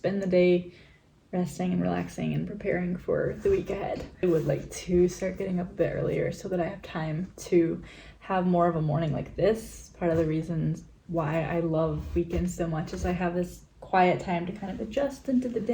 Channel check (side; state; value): both; identical; correlation 1.00